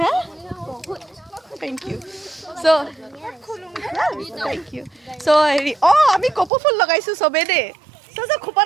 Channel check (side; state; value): left; drops out; at 6.5 s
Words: thank you so' thank you so' হেৰি আমি কপৌ ফুল লগাইছোঁ চবেই দেই চ'